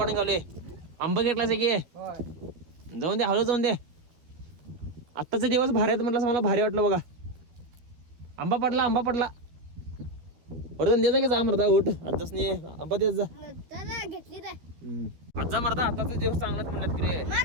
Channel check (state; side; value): late; left; 12 ms